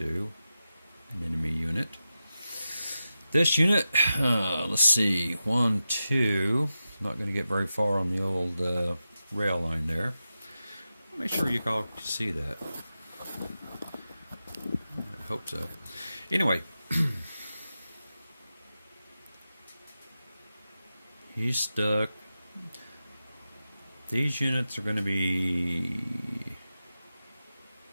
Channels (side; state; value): both; inverted; correlation -0.91